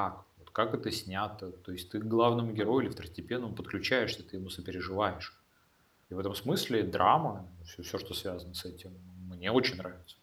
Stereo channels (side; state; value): both; identical; correlation 1.00